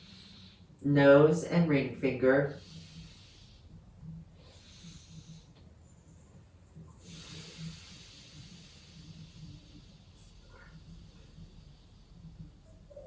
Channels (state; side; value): identical; both; correlation 1.00